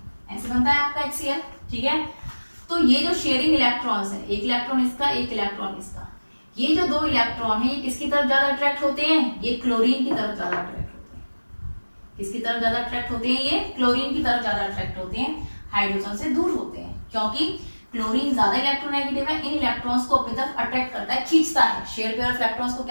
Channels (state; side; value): inverted; both; correlation -1.00